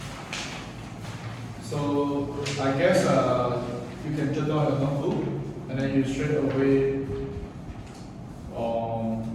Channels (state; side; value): identical; both; correlation 1.00